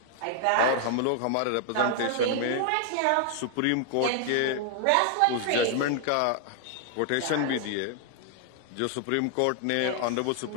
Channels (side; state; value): both; different; correlation 0.00